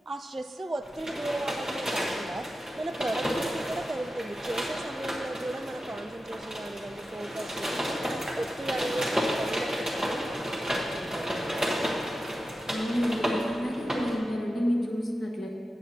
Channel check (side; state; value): both; normal; correlation 0.92